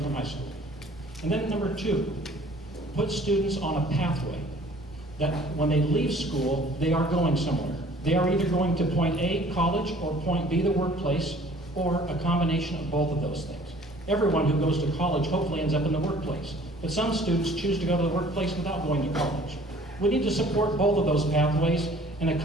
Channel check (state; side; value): normal; both; correlation 0.53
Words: from high school. And then number 2, put students on a pathway that when they leave school, they are going somewhere. They are either going to point A, college, or point B, the workplace, or a combination of both of those things. Everyone who goes to college hopefully ends up in the workplace, but some students choose to go to the workplace without going to college. We need to support both of those pathways and a